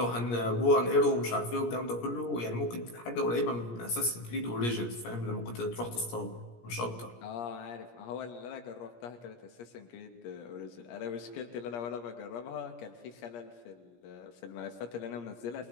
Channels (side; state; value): right; late; 17 ms